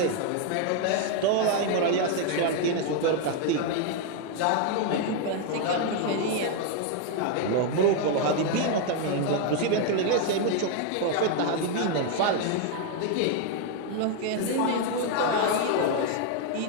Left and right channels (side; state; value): both; different; correlation 0.01